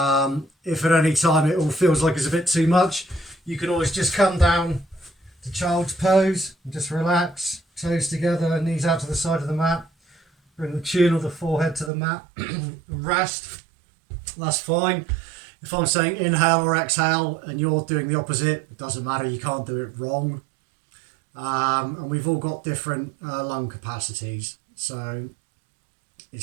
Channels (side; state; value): left; drops out; at 11.9 s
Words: If at any time it all feels like it's a bit too much, you can always just come down to child's pose and just relax, toes together, knees out to the side of the mat. Bring the chin or the forehead to the mat and rest. That's fine. If I'm saying inhale or exhale and you're doing the opposite, it doesn't matter, you can't do it wrong. And we've all got different lung capacities, so